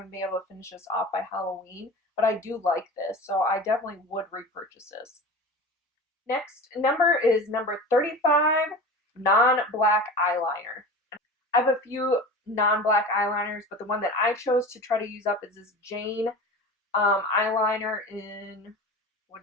to be able to finish this off by Halloween, but I do like this, so I definitely would repurchase this. Next number is number 35, non-black eyeliner. I have a few non-black eyeliners, but the one that I chose to try to use up is this Jane eyeliner in, what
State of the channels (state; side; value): normal; both; correlation 0.33